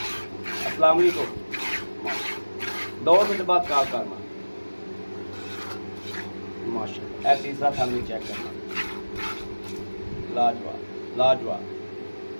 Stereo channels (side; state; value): both; inverted; correlation -1.00